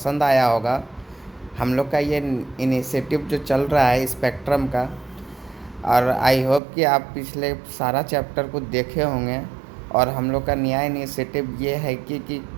आया होगा। हम लोग का ये इनिशिएटिव जो चल रहा है स्पेक्ट्रम का, और आई होप कि आप पिछले सारा चैप्टर को देखे होंगे। और हम लोग का नया इनिशिएटिव ये है कि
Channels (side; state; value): left; drops out; at 6.6 s